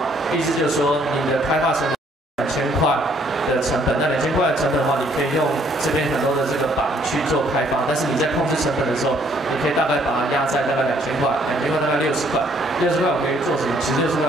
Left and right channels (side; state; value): both; normal; correlation 0.65